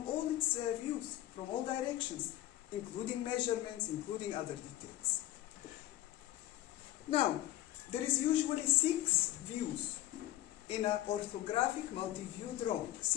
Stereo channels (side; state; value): right; quieter; 14.3 dB